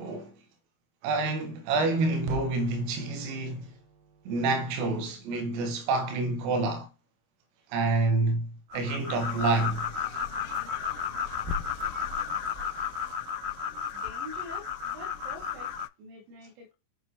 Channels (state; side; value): late; left; 25 ms